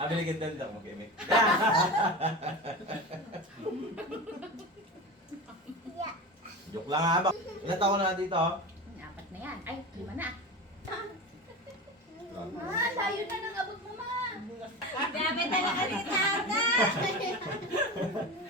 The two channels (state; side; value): normal; both; correlation 0.28